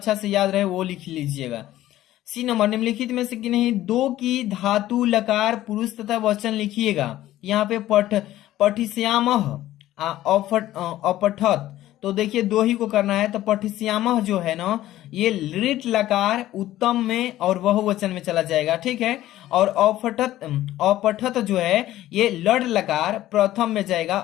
से याद रहे वो लिख लीजिएगा। सी नंबर, निम्नलिखित में से कि नहीं दो की धातु लकार पुरुष तथा वचन लिखिएगा। यहाँ पे पठिश्यामः, अपठत, तो देखिए दो ही को करना है। तो पठिश्यामः जो है ना ये लिट लकार उत्तम में और बहुवचन में चला जाएगा, ठीक है। और अपठत जो है ये लड लकार प्रथम में जाएगा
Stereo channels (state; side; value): quieter; right; 14.4 dB